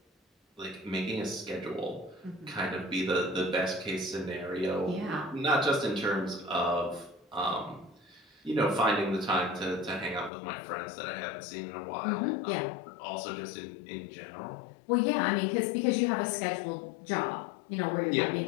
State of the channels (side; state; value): right; drops out; at 10.3 s